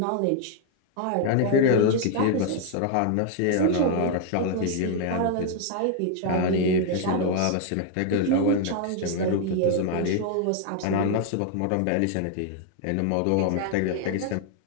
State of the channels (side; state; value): both; different; correlation 0.00